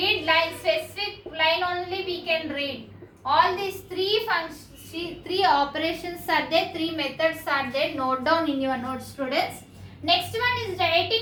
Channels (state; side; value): identical; both; correlation 1.00